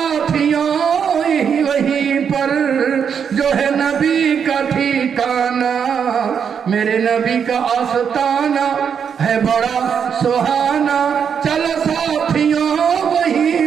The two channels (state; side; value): quieter; left; 7.3 dB